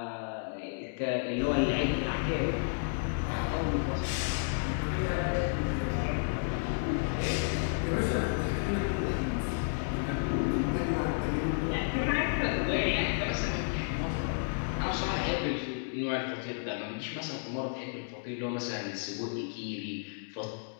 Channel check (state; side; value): silent; right; digital silence